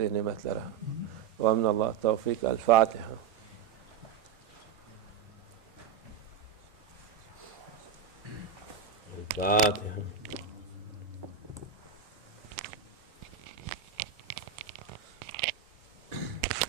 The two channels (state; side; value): quieter; left; 7.8 dB